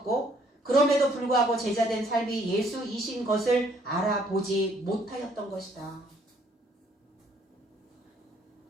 그럼에도 불구하고 제자된 삶이 예수이신 것을 알아보지 못하였던 것이다.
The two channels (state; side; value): normal; both; correlation 0.64